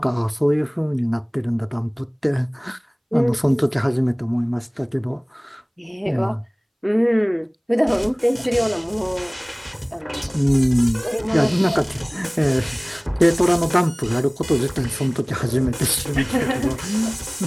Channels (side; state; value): both; identical; correlation 1.00